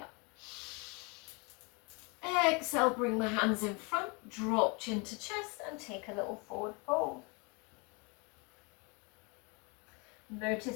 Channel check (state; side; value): quieter; right; 30.7 dB